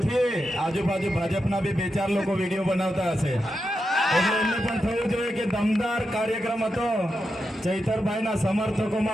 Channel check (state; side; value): normal; both; correlation 0.87